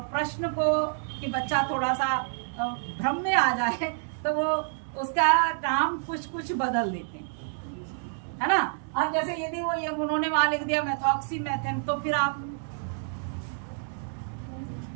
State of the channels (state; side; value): silent; left; digital silence